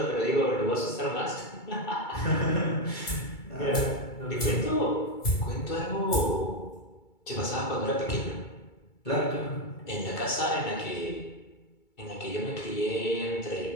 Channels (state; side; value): late; right; 2.3 ms